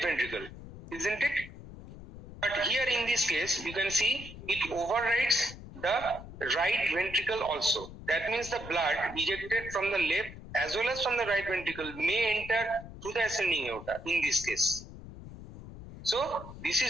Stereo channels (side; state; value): left; noise; rumble, 14 dB below the sound